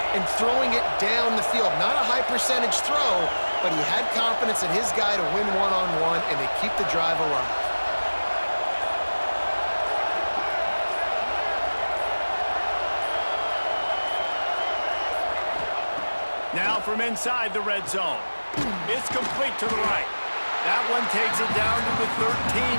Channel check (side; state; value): both; inverted; correlation -1.00